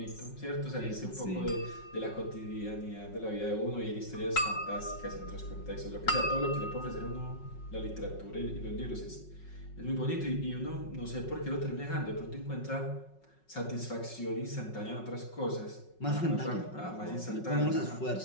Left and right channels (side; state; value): right; late; 5.4 ms